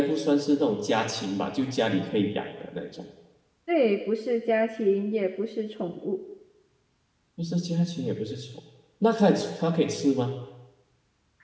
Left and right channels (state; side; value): identical; both; correlation 1.00